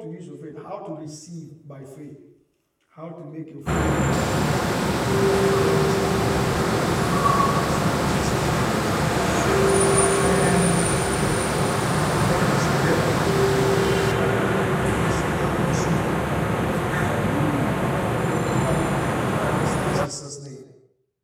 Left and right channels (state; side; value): identical; both; correlation 1.00